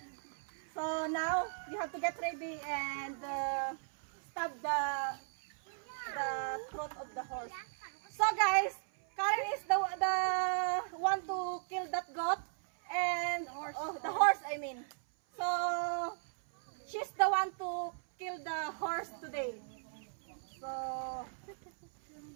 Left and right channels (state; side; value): silent; left; 53 dB below the other